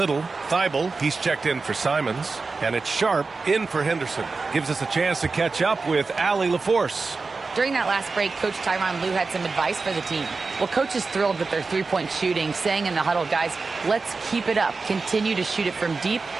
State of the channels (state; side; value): quieter; left; 4.2 dB